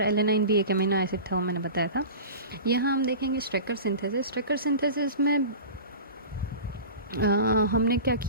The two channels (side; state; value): both; inverted; correlation -0.34